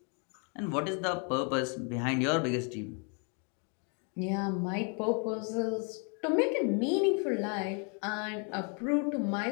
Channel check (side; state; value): right; quieter; 38.2 dB